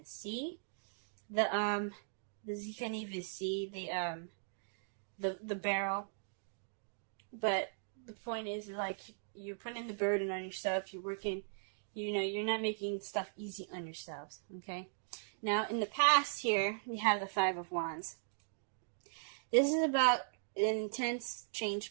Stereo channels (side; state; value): left; silent; digital silence